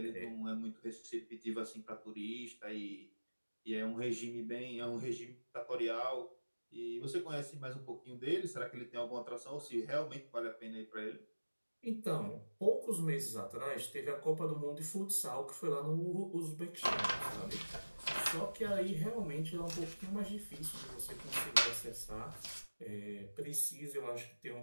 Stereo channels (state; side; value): inverted; both; correlation -1.00